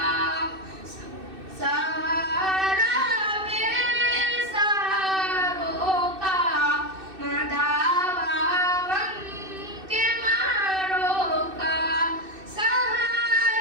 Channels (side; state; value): left; late; 2.6 ms